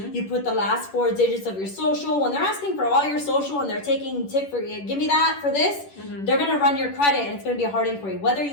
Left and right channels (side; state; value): right; late; 10 ms